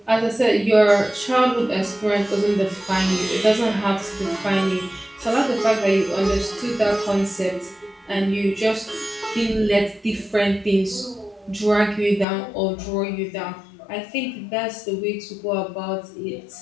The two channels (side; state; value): right; drops out; at 12.2 s